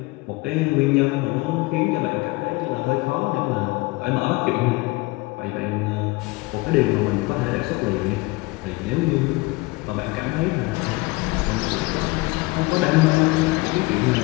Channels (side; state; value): right; quieter; 23.1 dB